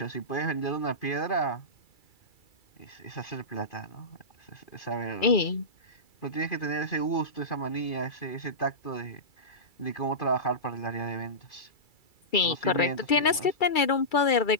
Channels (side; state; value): right; late; 2.3 ms